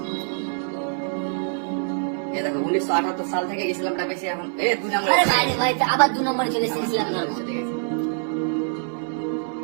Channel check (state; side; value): silent; left; 62 dB below the other